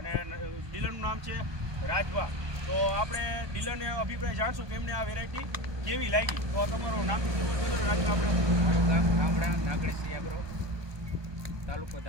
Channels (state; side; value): late; left; 1.2 ms